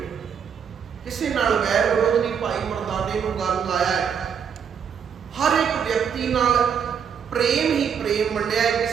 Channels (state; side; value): quieter; left; 7.4 dB